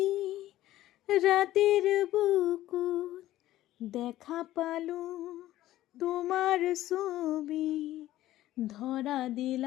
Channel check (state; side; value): quieter; right; 14.6 dB